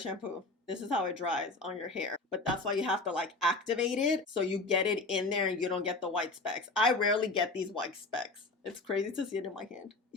This is how it dries on your hair. But that's why you have to like activate it so you get it in there and you don't get the white specks. I rarely get these white specks. It's crazy to see it in my hand.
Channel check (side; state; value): right; quieter; 3.2 dB